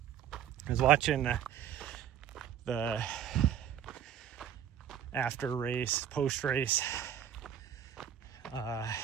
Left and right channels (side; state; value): left; quieter; 9.6 dB